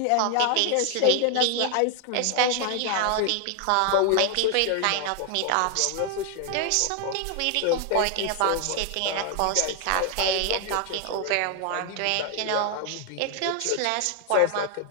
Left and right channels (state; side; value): different; both; correlation 0.00